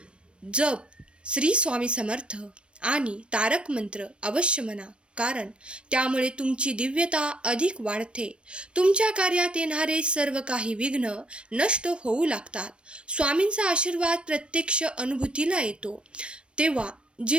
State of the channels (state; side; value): late; left; 0.058 ms